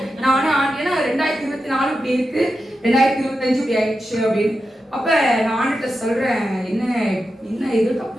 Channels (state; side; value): normal; both; correlation 0.90